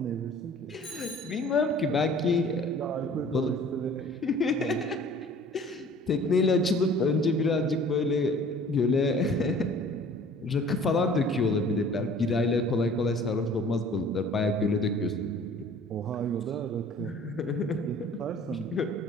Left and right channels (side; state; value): both; normal; correlation 0.50